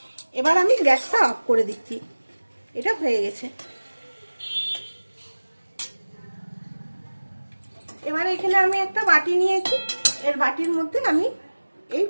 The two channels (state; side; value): inverted; both; correlation -1.00